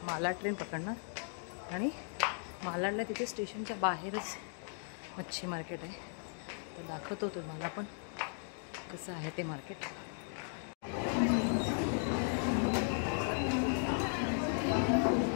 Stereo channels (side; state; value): right; silent; 53 dB below the other